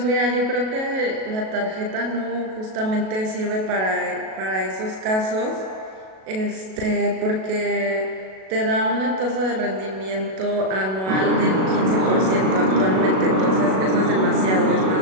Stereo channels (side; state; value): left; late; 37 ms